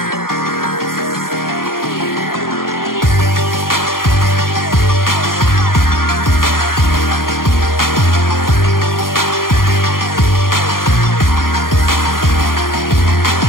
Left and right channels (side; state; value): right; late; 0.91 ms